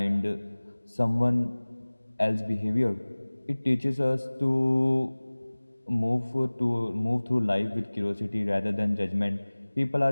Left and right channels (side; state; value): both; inverted; correlation -1.00